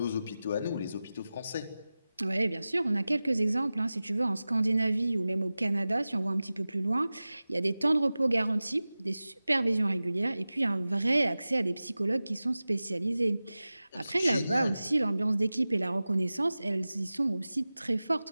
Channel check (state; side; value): inverted; both; correlation -0.96